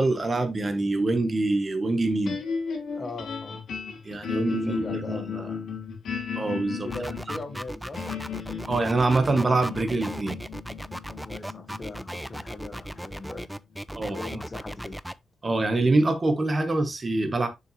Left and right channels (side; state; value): both; normal; correlation 0.90